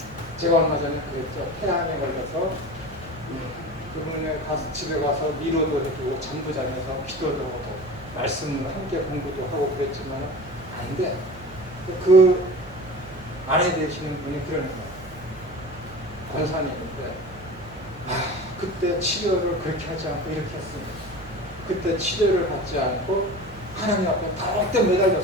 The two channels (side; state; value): right; noise; hum, 19 dB below the sound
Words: 제가 얼마 전에 그랬죠. 폐암에 걸려서 그분에 가서 집에 가서 위로도 해주고 잠도 자면서 기도도 하고 말씀을 함께 공부도 하고 그랬지만 아닌데 그 아내 되시는 분이 그러는 거예요. 권사님인데 그때 치료를 그렇게 하지 않고 이렇게 했습니다. 그때 치료를 받지 않고 하나님 앞에 더욱더